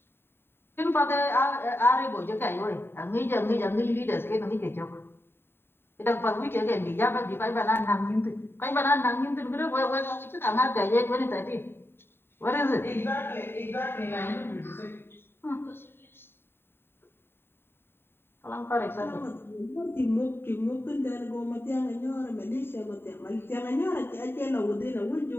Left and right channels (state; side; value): late; right; 0.11 ms